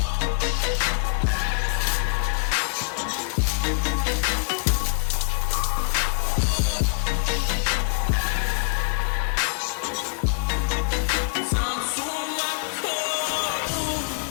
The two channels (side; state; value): right; silent; 62 dB below the other